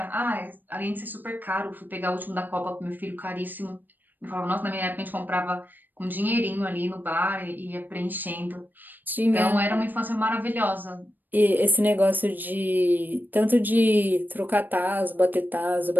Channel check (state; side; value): late; left; 0.090 ms